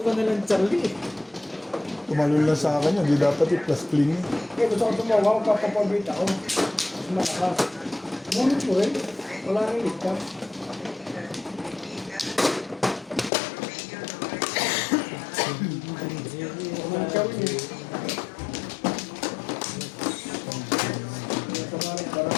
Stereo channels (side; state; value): right; drops out; at 13.3 s